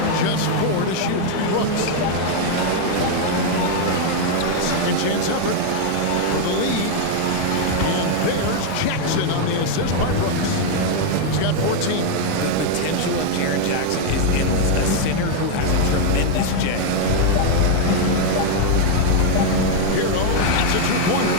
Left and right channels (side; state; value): both; different; correlation 0.00